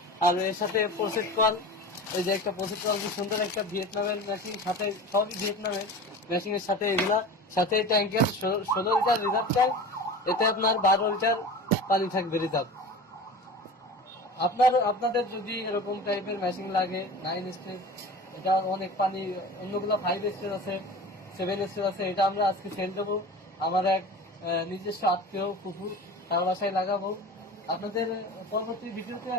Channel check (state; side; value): normal; both; correlation 0.34